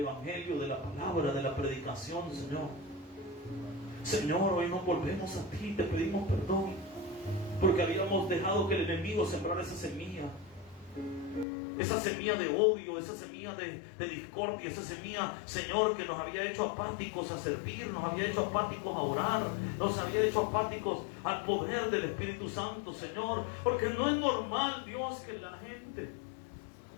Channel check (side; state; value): right; drops out; at 11.5 s